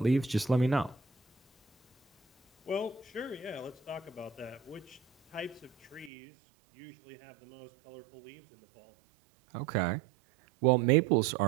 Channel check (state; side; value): drops out; left; at 6.1 s